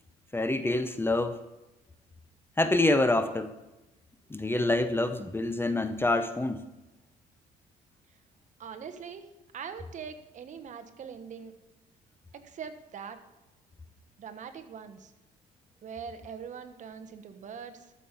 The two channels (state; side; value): normal; both; correlation 0.75